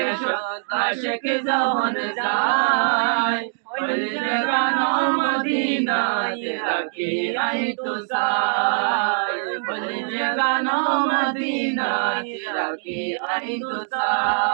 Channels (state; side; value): silent; left; digital silence